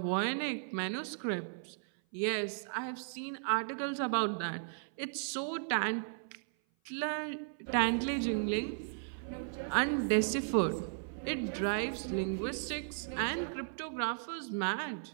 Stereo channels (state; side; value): silent; left; 54 dB below the other